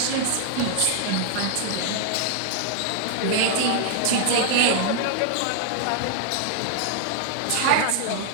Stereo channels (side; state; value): both; different; correlation 0.00